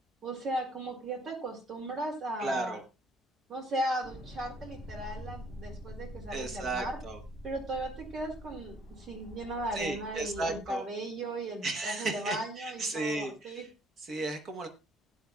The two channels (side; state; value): both; normal; correlation 0.62